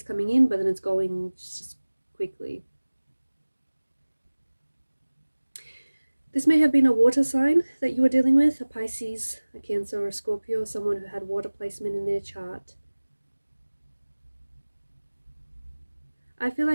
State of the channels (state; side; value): inverted; both; correlation -1.00